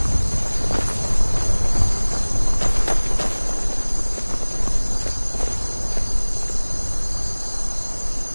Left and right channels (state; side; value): inverted; both; correlation -1.00